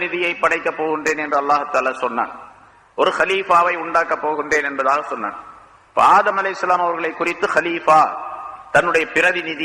படைக்க போகின்றேன் என்று அல்லாஹ் தஆலா சொன்னான். ஒரு ஹலீஃபாவை உண்டாக்க போகின்றேன் என்பதாக சொன்னான். ஆதம் அலைஹிஸ்ஸலாம் அவர்களை குறித்து ஹலீஃபா, தன்னுடைய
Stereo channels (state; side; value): identical; both; correlation 1.00